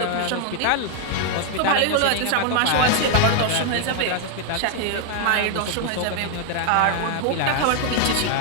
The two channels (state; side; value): different; both; correlation 0.00